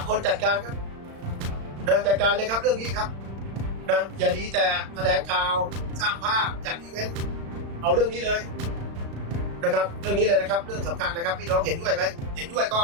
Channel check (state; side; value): late; left; 35 ms